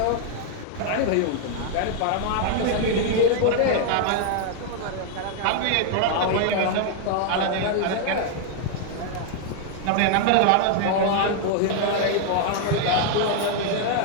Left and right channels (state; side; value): different; both; correlation 0.00